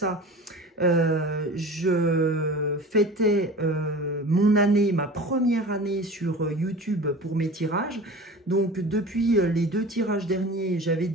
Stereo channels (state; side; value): normal; both; correlation 0.37